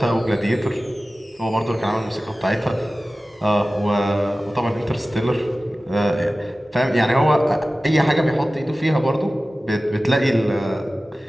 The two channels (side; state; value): both; normal; correlation 0.96